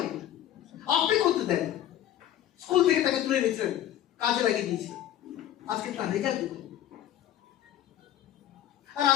আপনি করতে দেন। স্কুল থেকে তাকে তুলে নিয়েছিলেন, কাজে লাগিয়ে দিয়েছে, আজকে তার রেজাল্ট দেখুন। আর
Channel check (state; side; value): quieter; right; 11.9 dB